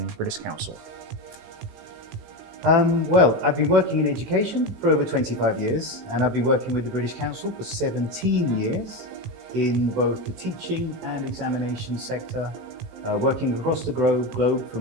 British Council? Well, I've been working in education for over 25 years, and I've been working with the British Council for 17 years in both the teaching and examination sector, working across the globe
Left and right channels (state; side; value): late; left; 18 ms